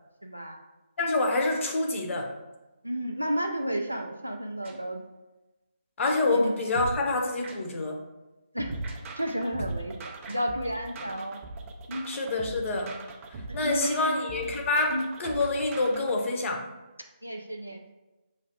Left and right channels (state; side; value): inverted; both; correlation -0.66